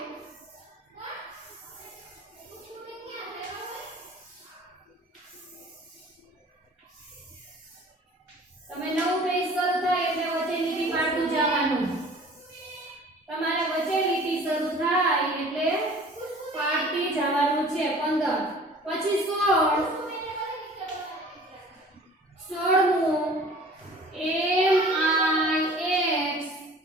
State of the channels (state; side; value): normal; both; correlation 0.47